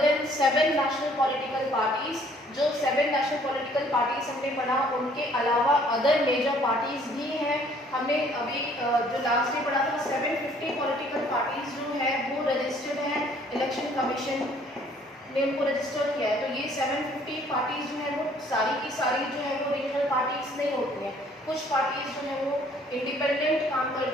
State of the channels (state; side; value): normal; both; correlation 0.60